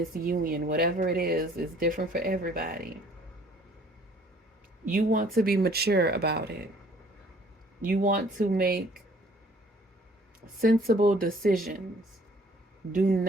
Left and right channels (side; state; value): both; normal; correlation 0.57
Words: union, whatever it is different for everybody. You want to be mature about it. You want to make sensible decisions. Do